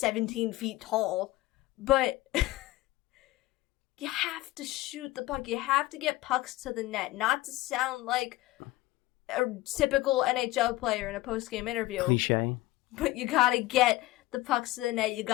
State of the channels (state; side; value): quieter; right; 17.9 dB